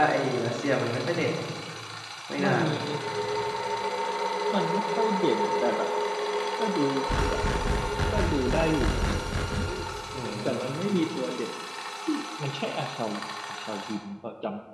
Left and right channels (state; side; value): identical; both; correlation 1.00